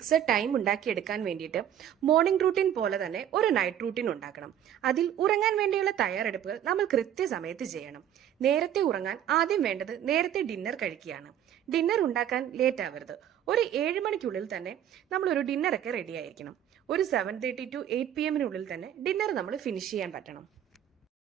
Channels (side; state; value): left; quieter; 10.4 dB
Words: ടൈം ഉണ്ടാക്കിയെടുക്കാൻ വേണ്ടിയിട്ട് മോർണിംഗ് റൂട്ടീൻ പോലെ തന്നെ ഒരു നൈറ്റ് റൂട്ടീൻ ഉണ്ടാക്കണം. അതിൽ ഉറങ്ങാൻ വേണ്ടിയുള്ള തയ്യാറെടുപ്പുകൾ നമ്മൾ കൃത്യസമയത്ത് ചെയ്യണം. നേരത്തെ ഉറങ്ങാൻ ആദ്യം വേണ്ടത് നേരത്തെ ഡിന്നർ കഴിക്കുകയാണ്. ഡിന്നർ ഉണ്ടാക്കാൻ ലേറ്റ് ആവരുത്. ഒരു 7 മണിക്കുള്ളിൽ തന്നെ നമ്മളൊരു ഡിന്നറൊക്കെ റെഡി ആയിരിക്കണം. ഒരു 7:30 to 8 PM തന്നെ ഡിന്നർ നമ്മൾ ഫിനിഷ് ചെയ്യാൻ പറ്റണം.